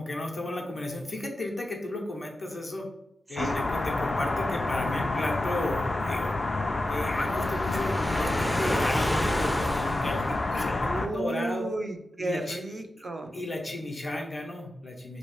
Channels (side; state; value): both; normal; correlation 0.91